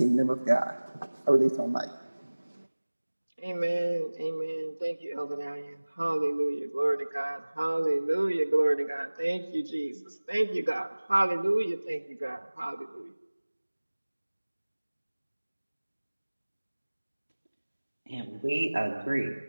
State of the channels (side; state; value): both; inverted; correlation -1.00